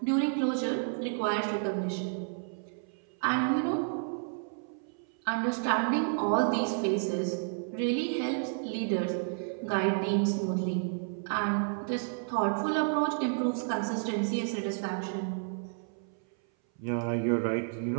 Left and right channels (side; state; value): left; silent; 57 dB below the other